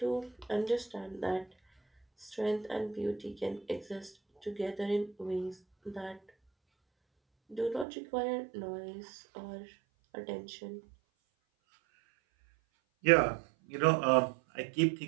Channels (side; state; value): left; drops out; at 7.9 s